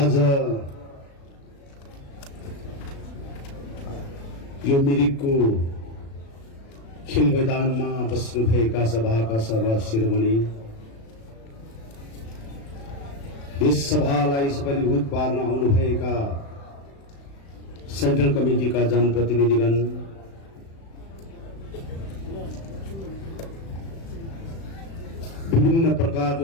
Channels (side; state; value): right; late; 36 ms